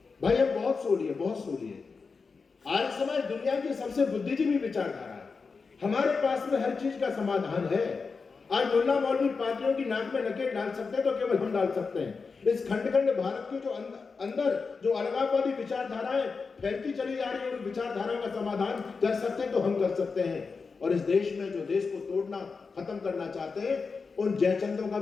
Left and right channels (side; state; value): right; quieter; 4.8 dB